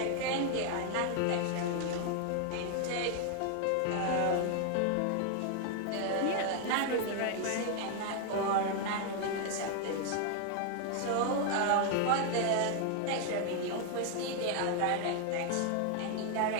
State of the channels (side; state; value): both; different; correlation 0.00